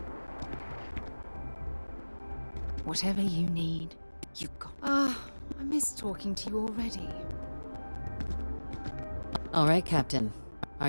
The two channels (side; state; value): both; inverted; correlation -1.00